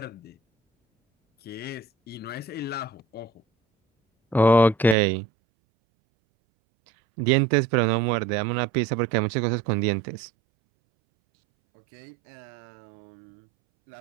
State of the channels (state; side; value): drops out; left; at 5.0 s